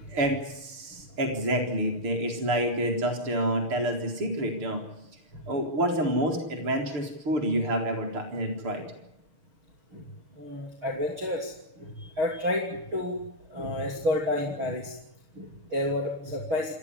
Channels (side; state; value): left; late; 6.6 ms